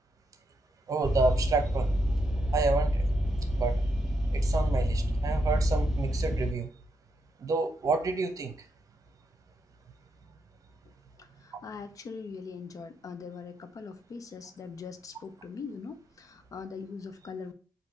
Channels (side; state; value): both; normal; correlation 0.81